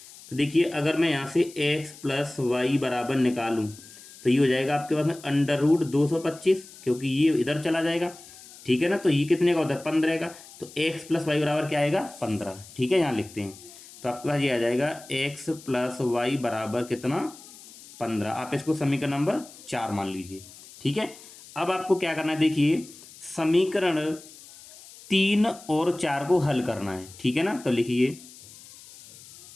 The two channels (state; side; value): noise; left; hiss, 19 dB below the sound